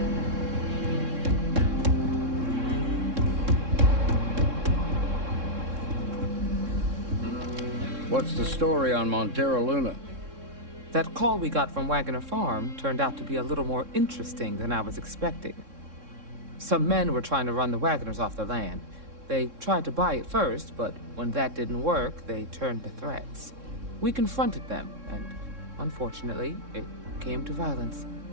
What's the story on Montara Luna? That call we got from Wagoner Farm turned out to be a little more interesting than I was expecting. Some men were trying to run the Wagoners off the land. They tried to buy it first, but when that didn't work, they turned to threats. We confronted them, and unfortunately, it came to violence.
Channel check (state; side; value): late; left; 3.6 ms